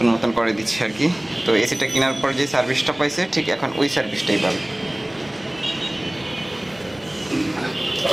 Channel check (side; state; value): left; noise; hum, 27 dB below the sound